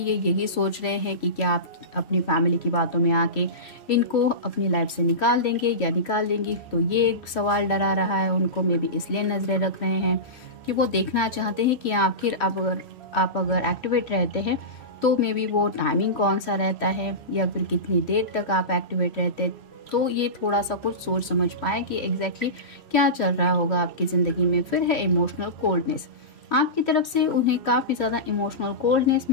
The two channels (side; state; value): right; late; 2.8 ms